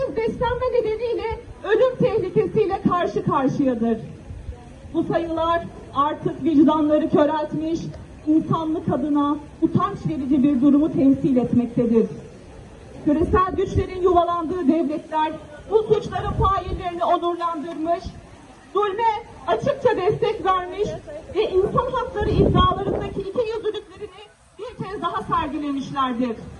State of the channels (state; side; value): identical; both; correlation 1.00